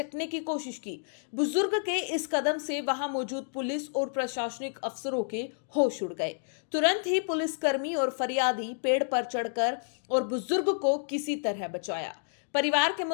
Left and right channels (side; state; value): right; silent; digital silence